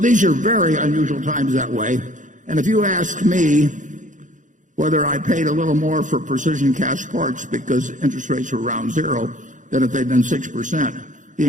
are very unusual times that way. And if you ask me whether I paid a little more for precision cast parts because interest rates were around zero than if they'd been 6%, the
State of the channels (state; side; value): late; left; 0.37 ms